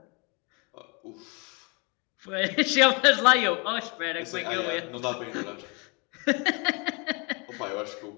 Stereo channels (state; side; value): quieter; right; 31.1 dB